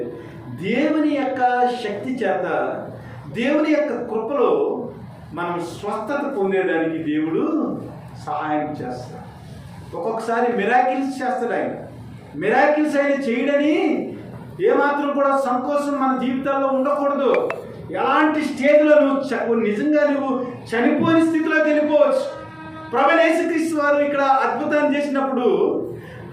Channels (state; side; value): identical; both; correlation 1.00